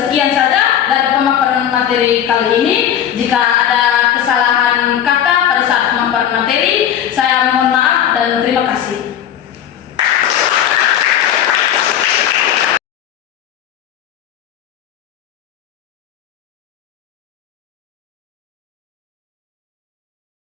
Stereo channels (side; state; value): right; quieter; 10.1 dB